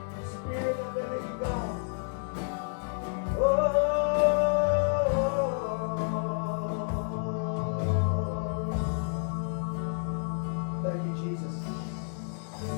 Spirit of the living God. Thank you, Jesus.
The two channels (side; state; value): right; silent; digital silence